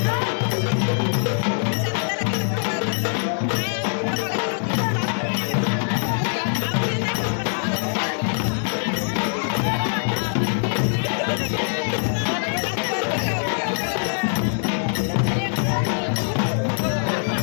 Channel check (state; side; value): silent; right; digital silence